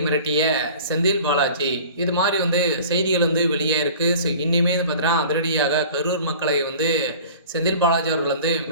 மிரட்டிய செந்தில் பாலாஜி இது மாதிரி செய்திகள் வெளியாயிருக்கு. ஸோ இன்னுமே பார்த்தீங்கன்னா அதிரடியாக கரூர் மக்களை செந்தில் பாலாஜி அவர்கள்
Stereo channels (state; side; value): inverted; both; correlation -0.44